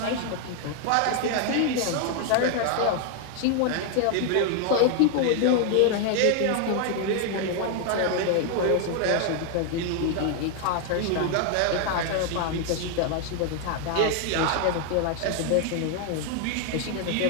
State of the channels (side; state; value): both; different; correlation 0.01